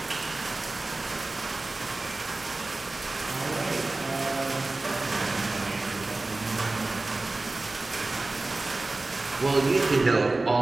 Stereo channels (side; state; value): left; quieter; 3.2 dB